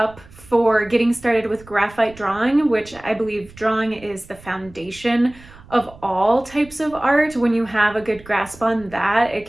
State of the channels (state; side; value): noise; right; rumble, 22 dB below the sound